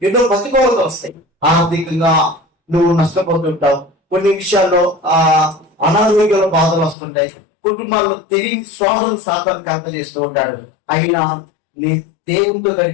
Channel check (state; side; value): drops out; right; at 7.0 s